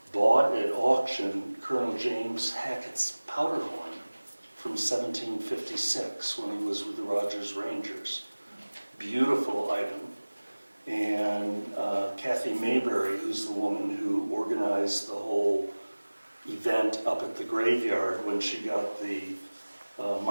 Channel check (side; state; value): both; inverted; correlation -1.00